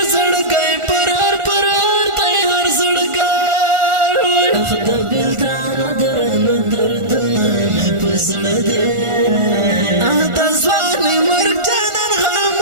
زړګی پر هر دی هر زړګی اخ د بېلتانه دردونه مې په زړه دی د ځوانې مرګ جانان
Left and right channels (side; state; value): left; late; 1.4 ms